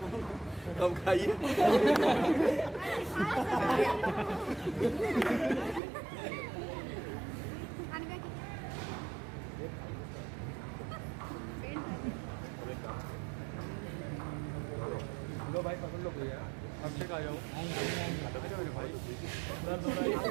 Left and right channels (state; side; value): drops out; left; at 5.8 s